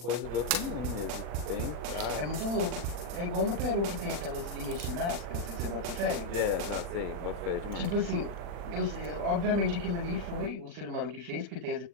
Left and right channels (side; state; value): left; late; 40 ms